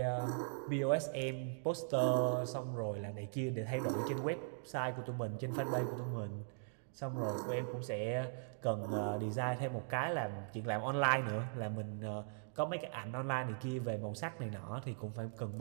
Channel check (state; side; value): silent; left; digital silence